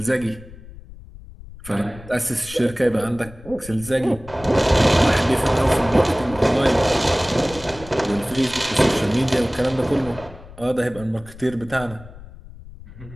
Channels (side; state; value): left; noise; rumble, 18 dB below the sound